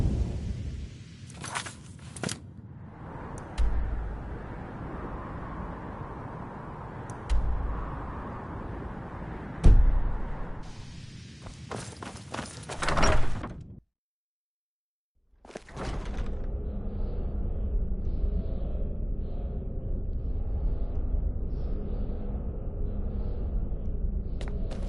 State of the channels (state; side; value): identical; both; correlation 1.00